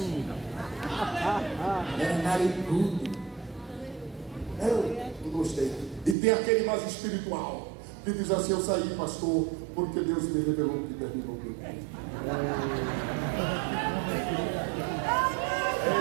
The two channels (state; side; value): drops out; left; at 6.2 s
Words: era narigudo. Eu não gostei. E tem aquele mais espiritual que diz assim: eu saí, pastor, porque Deus me revelou que terminou o meu tempo.